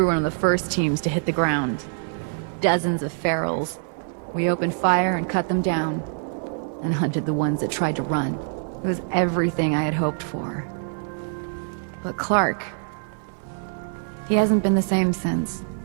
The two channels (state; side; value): silent; left; 59 dB below the other